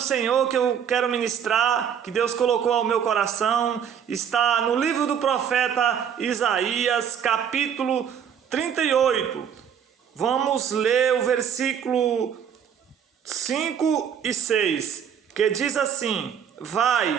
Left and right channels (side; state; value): left; quieter; 8.2 dB